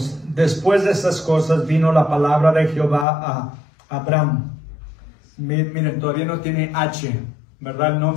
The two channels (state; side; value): drops out; right; at 3.1 s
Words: después de estas cosas vino la palabra de Jehová a Abraham. Miren, todavía no tiene H, ¿verdad? El